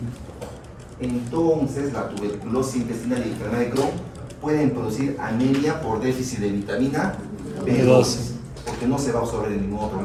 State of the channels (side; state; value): both; identical; correlation 1.00